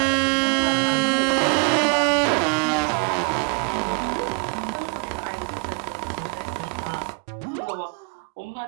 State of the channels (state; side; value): quieter; left; 33.6 dB